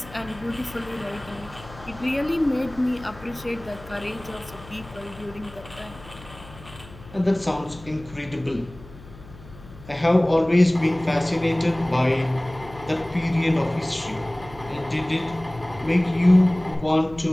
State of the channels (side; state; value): left; noise; hum, 19 dB below the sound